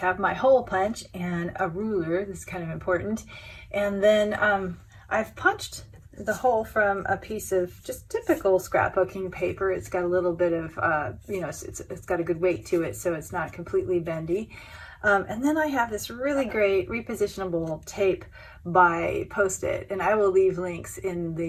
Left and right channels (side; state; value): both; identical; correlation 1.00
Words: my hole punch and a ruler. This is kind of important. And then I've punched the hole from a piece of just typical scrapbooking paper. It's got a little bit of, it's got a good weight to it, so it's not completely bendy. And then I have this really great repositionable tape by Post-it, and I will leave links in